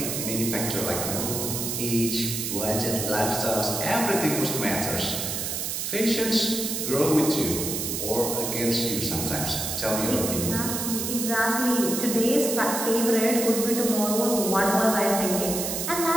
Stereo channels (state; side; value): noise; right; hiss, 3 dB below the sound